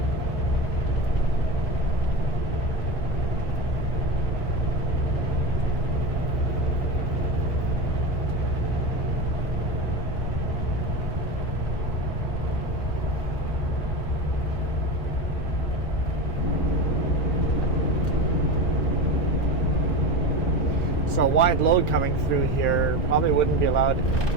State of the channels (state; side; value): normal; both; correlation 0.24